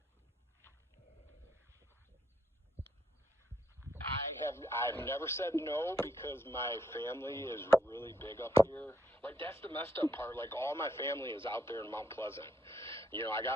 I've never said no because my family is really big up here. Like, that's the messed up part. Like, all my family is out there in Mount Pleasant. You know, I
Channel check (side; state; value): both; normal; correlation 0.75